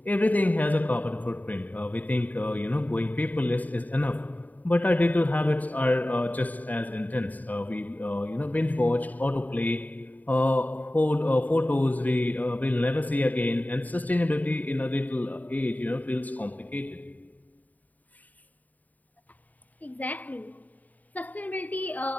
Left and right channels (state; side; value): late; right; 0.078 ms